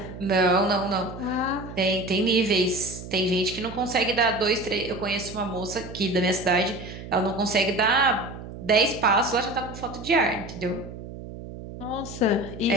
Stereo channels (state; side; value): noise; right; hum, 12 dB below the sound